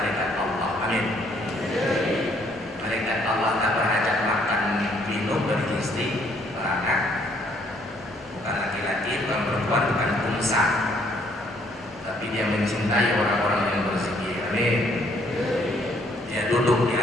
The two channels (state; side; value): normal; both; correlation 0.66